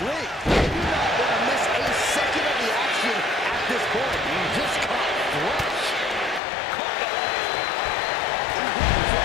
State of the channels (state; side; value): drops out; right; at 6.4 s